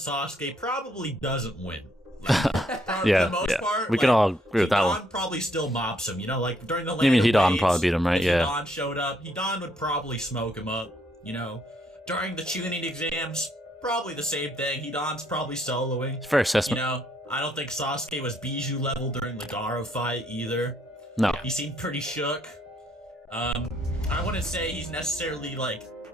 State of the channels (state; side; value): normal; both; correlation 0.70